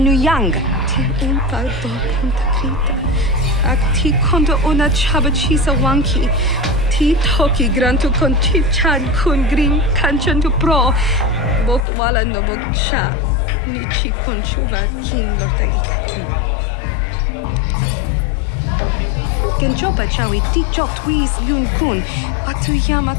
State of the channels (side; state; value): right; drops out; at 11.9 s